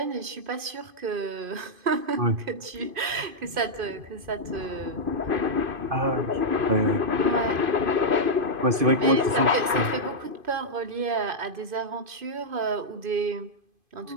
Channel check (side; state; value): left; late; 2.5 ms